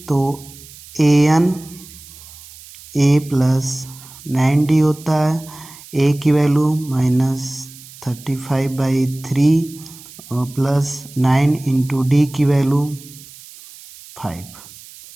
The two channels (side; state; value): right; noise; hiss, 19 dB below the sound